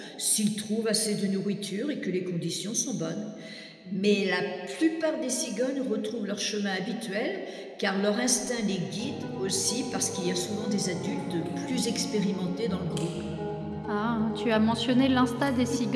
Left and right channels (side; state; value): both; identical; correlation 1.00